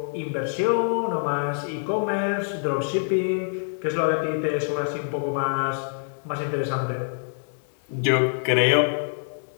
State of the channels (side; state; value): right; silent; digital silence